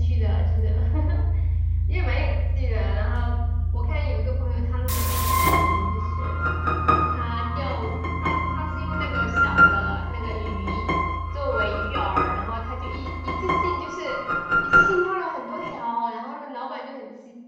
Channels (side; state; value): both; identical; correlation 1.00